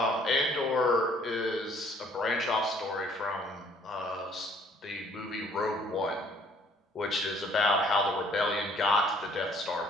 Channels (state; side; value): normal; both; correlation 0.60